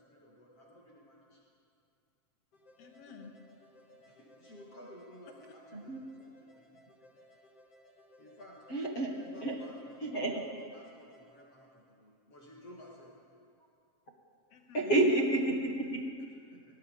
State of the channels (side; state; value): right; late; 7.6 ms